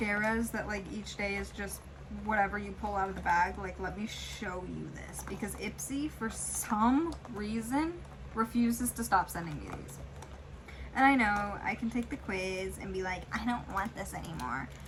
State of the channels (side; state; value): both; identical; correlation 1.00